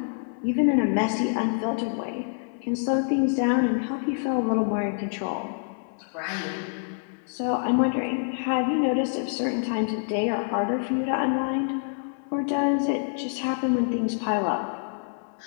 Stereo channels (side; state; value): right; silent; 61 dB below the other